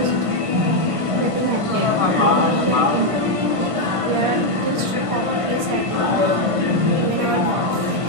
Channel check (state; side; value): late; left; 1.5 ms